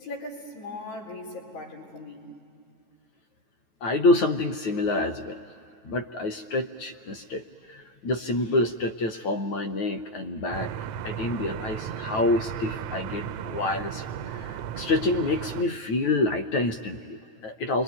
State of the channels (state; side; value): late; right; 9.2 ms